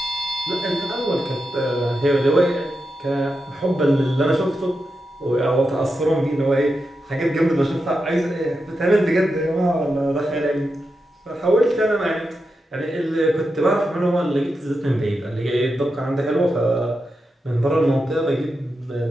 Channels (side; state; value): both; normal; correlation 0.88